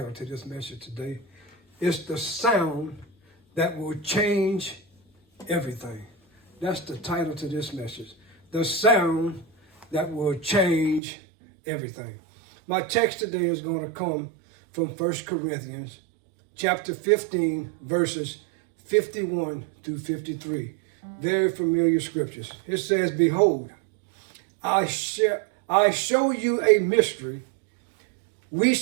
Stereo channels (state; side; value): drops out; left; at 11.0 s